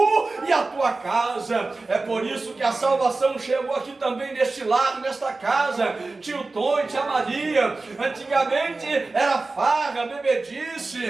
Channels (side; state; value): left; quieter; 3.5 dB